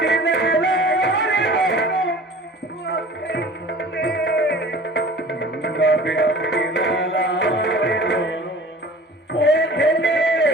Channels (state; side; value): normal; both; correlation 0.44